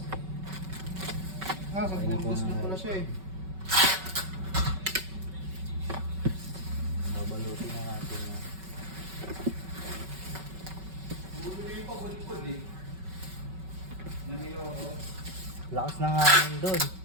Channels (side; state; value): left; late; 5.3 ms